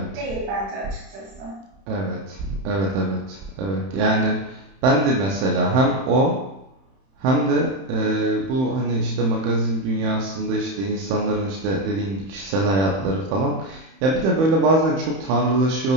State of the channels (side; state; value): left; late; 31 ms